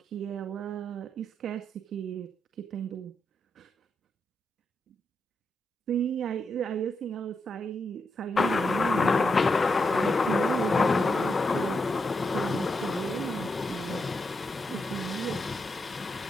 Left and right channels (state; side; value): normal; both; correlation 0.83